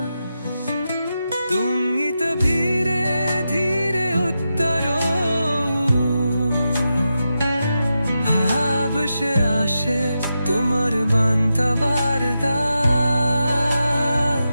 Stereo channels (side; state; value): both; inverted; correlation -0.88